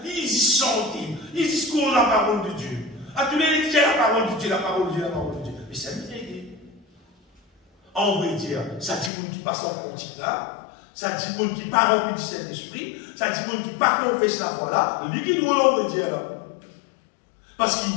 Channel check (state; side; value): drops out; right; at 9.1 s